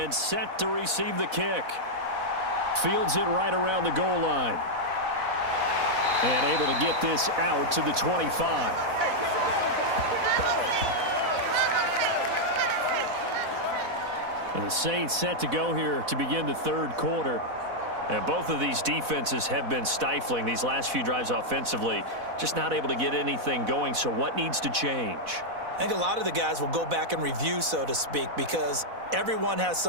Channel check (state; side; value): late; left; 4.1 ms